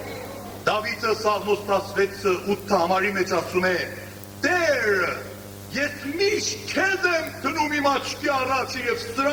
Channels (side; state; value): both; identical; correlation 1.00